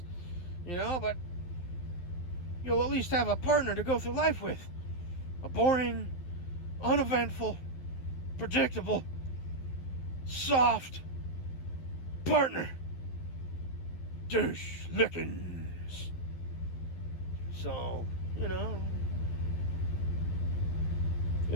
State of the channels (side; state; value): right; late; 11 ms